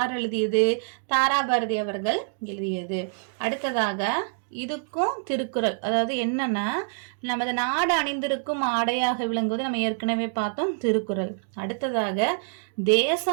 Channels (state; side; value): silent; left; digital silence